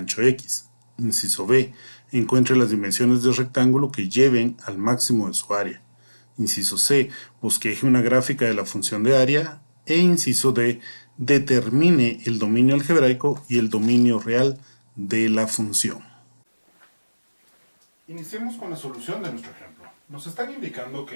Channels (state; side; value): inverted; both; correlation -1.00